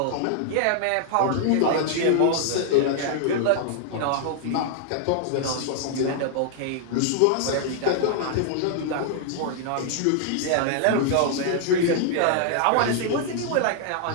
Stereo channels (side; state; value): both; different; correlation -0.01